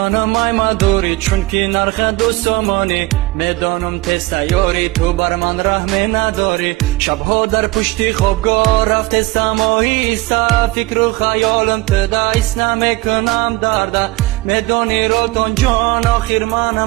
ای مدوری چون که نرخ دوستمانی میدانم تست یاری تو بر من رحمی نداری شبها در پشتی خوابگاه رفته سماهی فکر و خیالم تدایست نمیکنم درده میدانی رالتان جان آخر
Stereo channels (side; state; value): left; quieter; 20.5 dB